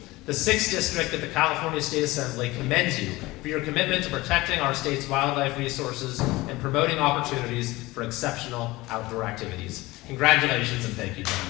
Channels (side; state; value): right; quieter; 20.2 dB